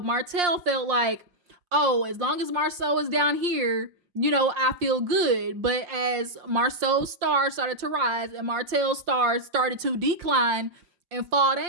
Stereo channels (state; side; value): late; left; 5.7 ms